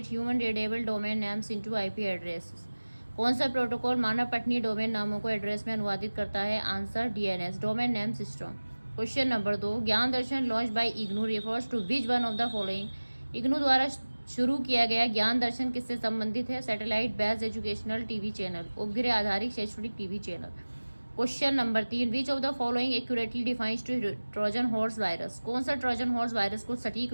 human readable domain names into IP address? कौन सा protocol मानव पठनीय domain नामों को एड्रेस में अनुवादित करता है? Answer DNS, domain name system. Question number 2, Gyan Darshan launch by IGNOU refers to which one of the following? IGNOU द्वारा शुरू किया गया ज्ञान दर्शन किससे संबंधित है? Satellite based educational TV channel, उपग्रह आधारित शैक्षणिक TV channel. Question number 3, which of the following accurately defines to trojan horse virus? कौन सा ट्रोजन हॉर्स वायरस को सटीक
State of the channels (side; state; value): both; inverted; correlation -1.00